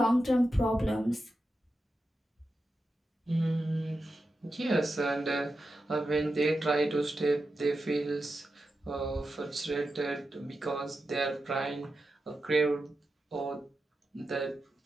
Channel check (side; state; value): both; normal; correlation 0.90